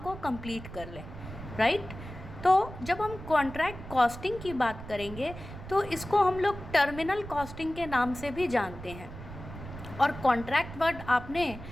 कंप्लीट कर लें। राइट, तो जब हम कॉन्ट्रैक्ट कॉस्टिंग की बात करेंगे तो इसको हम लोग टर्मिनल कॉस्टिंग के नाम से भी जानते हैं। और कॉन्ट्रैक्ट वर्ड आपने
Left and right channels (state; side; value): noise; right; rumble, 12 dB below the sound